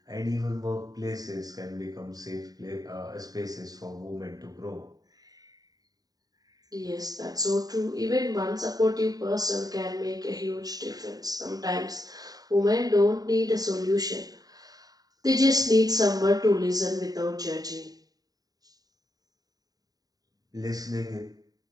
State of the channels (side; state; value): left; late; 0.18 ms